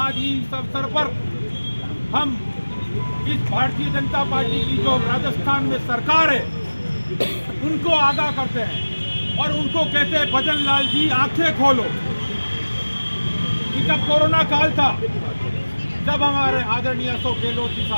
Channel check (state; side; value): inverted; both; correlation -1.00